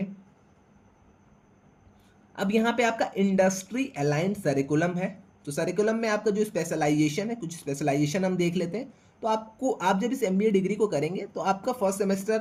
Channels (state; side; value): identical; both; correlation 1.00